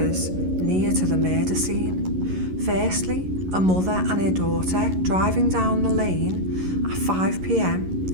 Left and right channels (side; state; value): left; late; 11 ms